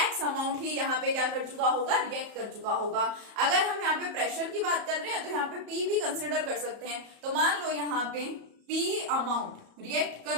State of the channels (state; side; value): late; left; 34 ms